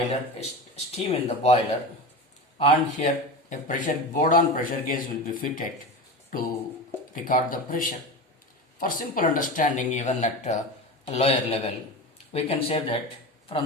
steam in the boiler, and here a board-on pressure gauge will be fitted to record the pressure. For simple understanding, even at a lower level, we can say that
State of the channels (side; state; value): both; normal; correlation 0.27